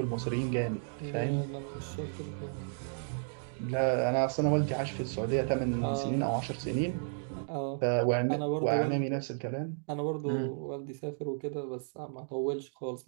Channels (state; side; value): silent; left; digital silence